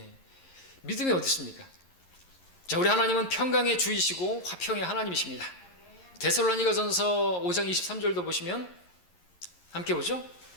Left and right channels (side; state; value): right; late; 11 ms